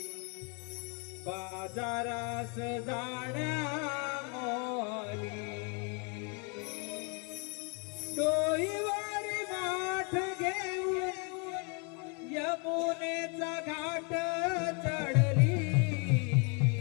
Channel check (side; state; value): right; quieter; 34.8 dB